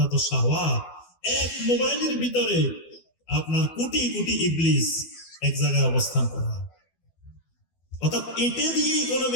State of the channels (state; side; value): late; right; 12 ms